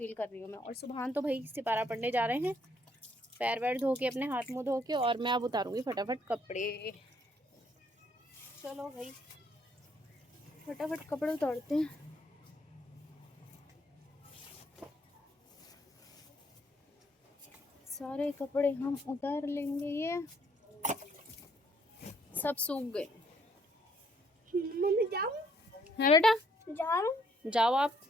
कर रही हूँ मैं। और सुबह तो भाई सिपारा पढ़ने जा रहे हैं, पैर वैर धो के, अपने हाथ मुँह धो के, और मैं अब उतारूँगी फटाफट कपड़े। चलो भाई फटाफट कपड़े उतारते हैं। सारे कपड़े हम उतार लेंगे। ये सब सूख गए। मम्मी जाऊं? है बेटा, जाऊं? जाओ आप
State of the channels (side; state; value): both; normal; correlation 0.68